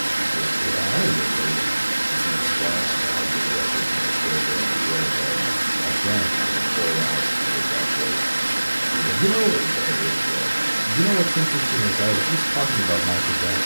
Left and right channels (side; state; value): both; inverted; correlation -1.00